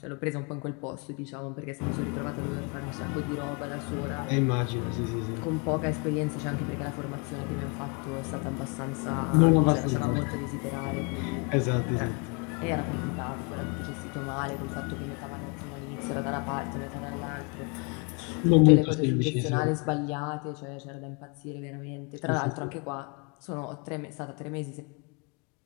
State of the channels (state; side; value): quieter; right; 33.8 dB